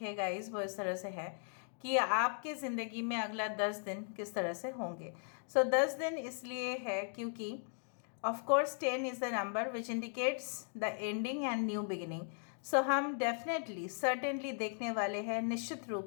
है गाइस वो इस तरह से है कि आपके ज़िंदगी में अगला 10 दिन किस तरह से होंगे। 10 दिन इसलिए है क्योंकि of course 10 is the number which indicates the ending and new beginning. हम डेफिनेटली सर्टेनली देखने वाले हैं निश्चित रूप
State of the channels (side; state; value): right; silent; 53 dB below the other